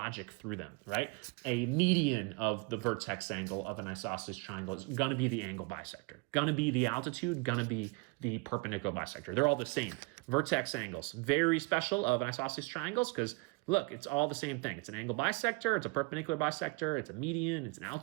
through them, right? A median of the vertex angle of an isosceles triangle is going to be the angle bisector, going to be the altitude, going to be the perpendicular bisector. They're all the same. Vertex angles, very special of an isosceles triangles because, look, it's all the same thing. It's an angle bisector, it's a perpendicular bisector, it's a median, it's an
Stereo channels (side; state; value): left; quieter; 28.6 dB